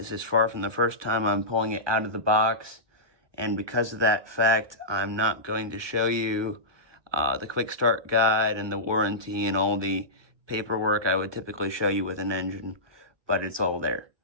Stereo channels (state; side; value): late; left; 1.2 ms